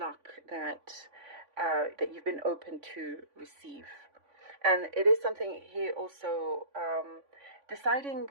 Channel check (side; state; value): left; late; 3.5 ms